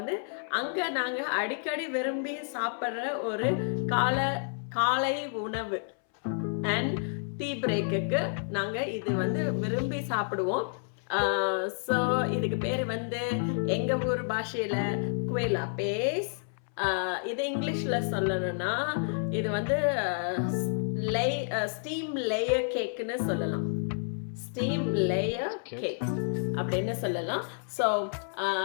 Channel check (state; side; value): silent; right; 58 dB below the other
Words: நாங்கள் அடிக்கடி விரும்பி சாப்பிட்ற ஒரு காலை உணவு அண்ட் டீ பிரேக்குக்கு நாங்கள் இது விரும்பி சாப்பிடுவோம். ஸோ இதுக்கு பேர் எங்கள் ஊர் பாஷையில் குவே லாபேஸ். இது இங்கிலீஷில் சொல்லணும்னா இது ஸ்டீம் லேயர் கேக்குன்னு சொல்லலாம். ஸ்டீம் லேயர் கேக் அப்படின்னு சொல்லலாம். ஸோ